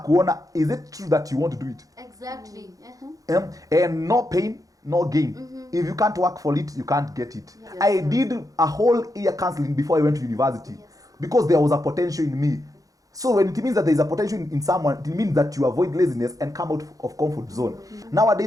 kuona, is it true that you want to do it? Exactly. And no pain, no gain. If you can't work for it, you can't get it. I did a whole year counseling before I went to university because there was a potential in me. So when it means that there is a potential in someone, it means that you avoid laziness and come out of comfort zone.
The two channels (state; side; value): late; left; 0.17 ms